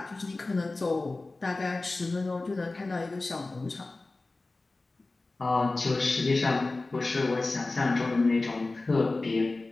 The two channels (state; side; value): quieter; right; 3.2 dB